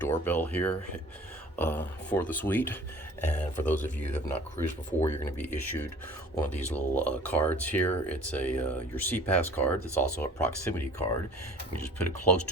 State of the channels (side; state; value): both; normal; correlation 0.49